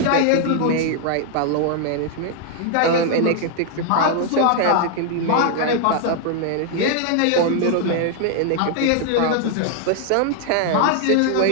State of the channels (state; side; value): different; both; correlation 0.00